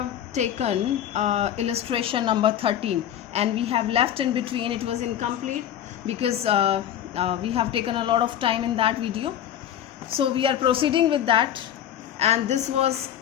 taken illustration number 13 and we have left in between. It was incomplete because we have taken a lot of time in that video. So we are proceeding with that, and this was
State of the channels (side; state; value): right; quieter; 10.5 dB